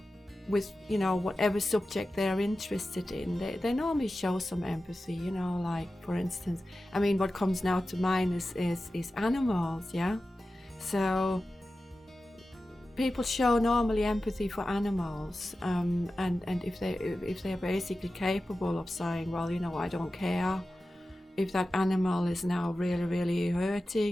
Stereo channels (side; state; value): both; normal; correlation 0.94